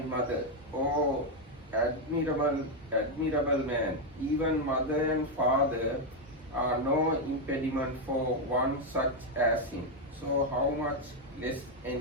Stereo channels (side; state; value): both; normal; correlation 0.03